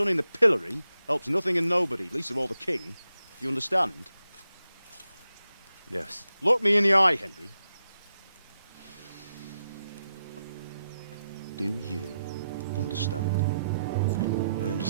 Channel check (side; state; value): both; inverted; correlation -0.86